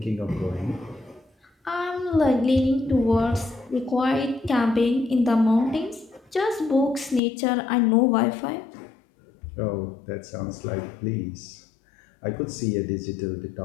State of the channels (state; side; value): drops out; right; at 7.2 s